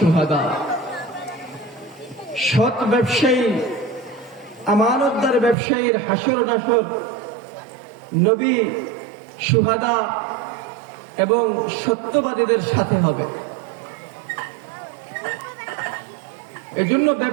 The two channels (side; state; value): left; drops out; at 5.6 s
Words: সৎ ব্যবসায়ী, আমানতদার ব্যবসায়ীর হাসর নাসর নবী, শুহাদা এবং সত্যবাদীদের সাথে হবে। এজন্য